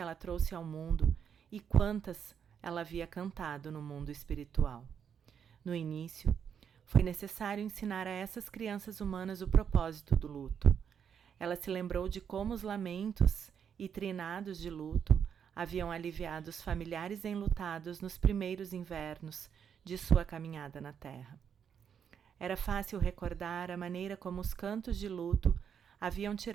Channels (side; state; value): left; quieter; 7.7 dB